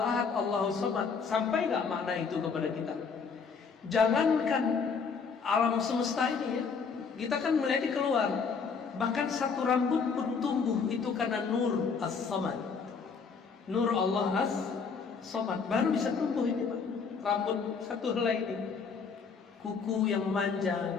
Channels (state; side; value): quieter; right; 5.5 dB